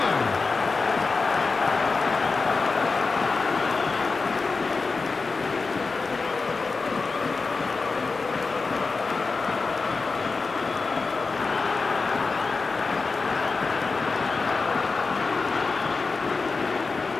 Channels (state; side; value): quieter; right; 4.2 dB